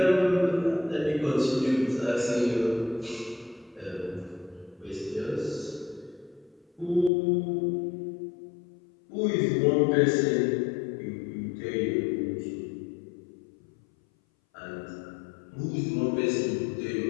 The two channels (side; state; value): right; drops out; at 7.1 s